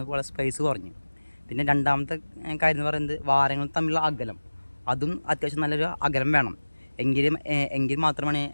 പോലെ സ്പേസ് കുറഞ്ഞു. പിന്നെ രണ്ടാമത്തെ കാര്യം എന്ന് പറയുന്നത്, വാരങ്ങൾ തമ്മിലുള്ള അകലം, അതും അത്യാവശ്യം നല്ലൊരു അകലം വേണം. എങ്കിൽ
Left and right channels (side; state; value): both; inverted; correlation -1.00